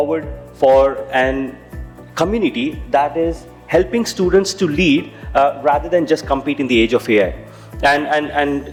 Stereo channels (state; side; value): identical; both; correlation 1.00